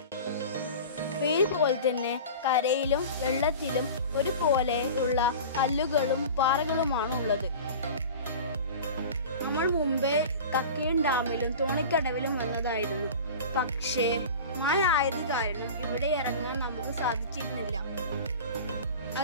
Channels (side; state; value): both; inverted; correlation -0.35